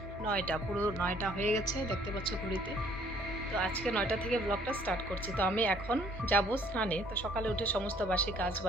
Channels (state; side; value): normal; both; correlation 0.60